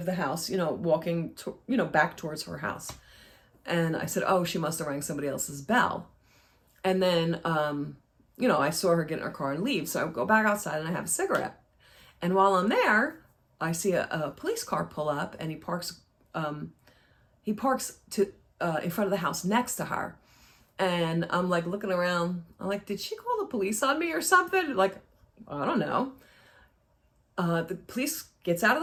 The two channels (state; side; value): identical; both; correlation 1.00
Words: the house, walking, back towards her house. And I said, oh, she must have rang somebody else's bell. And then, I saw her get in her car and leave. So I go back outside and I have a cigarette. And while I'm there, I see a police car pull up, and he parks in front of the house next to her. And I'm like looking around. I'm like, did she call the police on me or something? Like, I don't know. The police gets out of